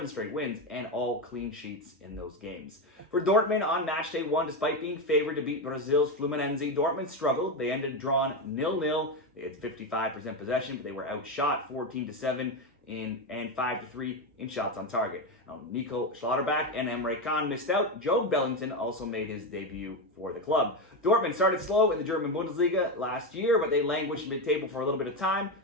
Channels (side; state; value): both; normal; correlation 0.12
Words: straight wins and all clean sheets in those games. For Dortmund on Matchday 1, despite being favored to beat Brazil's Fluminense, Dortmund struggled. They ended drawn 0-0. They had 55% possession, but they were outshot 14-7 and 5-3 in shots on target. Now, Nico Schlotterbeck and Emre Can missed out. Joe Bellington also made his debut for the club. Dortmund started slow in the German Bundesliga last year, but they languished mid-table for a little bit of time,